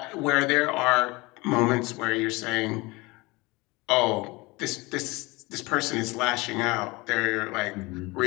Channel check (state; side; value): quieter; right; 23.8 dB